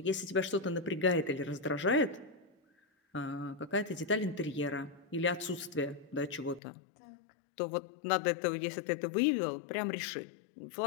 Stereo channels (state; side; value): drops out; right; at 6.6 s